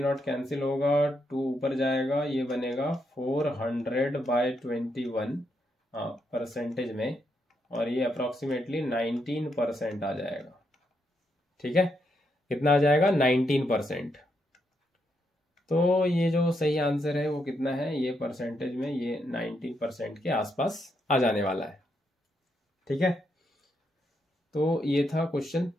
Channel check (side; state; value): both; normal; correlation 0.79